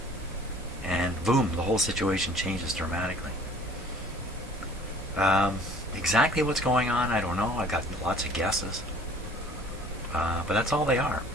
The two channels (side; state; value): both; normal; correlation 0.52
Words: and boom, the whole situation changes dramatically. Exactly what's going on, I don't know. I got lots of guesses, but that's all they are.